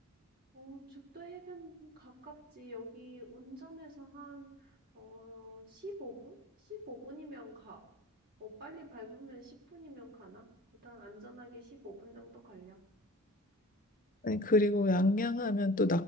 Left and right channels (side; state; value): both; normal; correlation 0.45